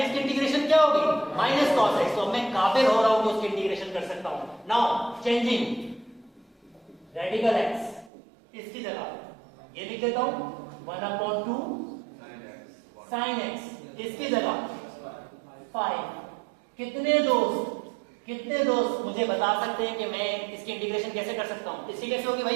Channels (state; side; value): drops out; left; at 8.1 s